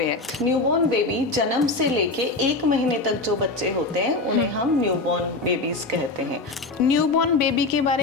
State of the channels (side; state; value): right; quieter; 3.3 dB